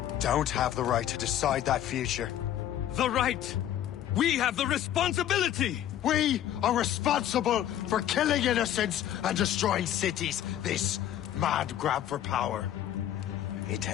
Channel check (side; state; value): right; quieter; 11.5 dB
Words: don't have the right to decide that future. The right! We have the responsibility! We are responsible for killing innocents and destroying cities. This mad grab for power. It